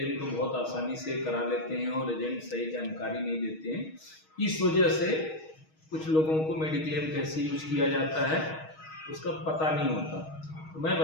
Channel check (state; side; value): late; right; 6.3 ms